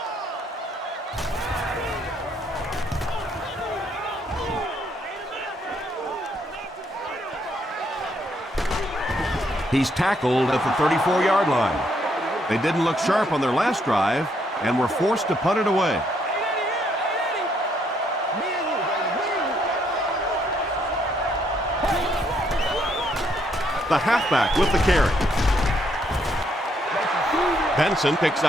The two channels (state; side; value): normal; both; correlation 0.72